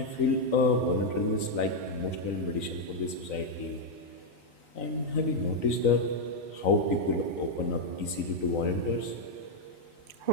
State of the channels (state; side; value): late; right; 3.9 ms